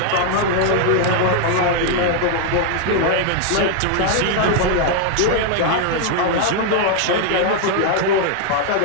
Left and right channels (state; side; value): different; both; correlation 0.00